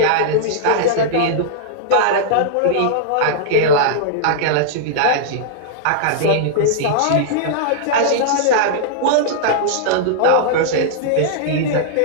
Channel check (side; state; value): both; different; correlation -0.02